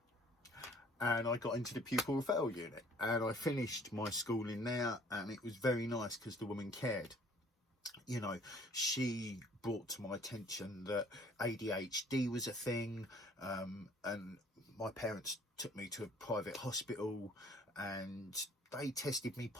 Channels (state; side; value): normal; both; correlation 0.56